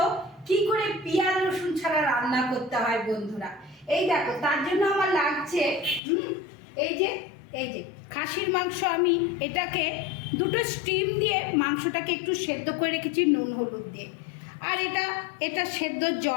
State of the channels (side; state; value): right; drops out; at 6.0 s